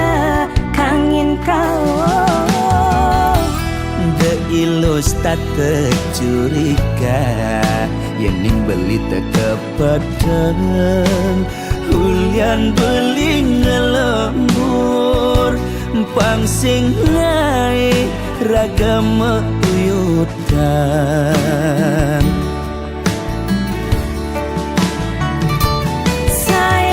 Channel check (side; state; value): both; identical; correlation 1.00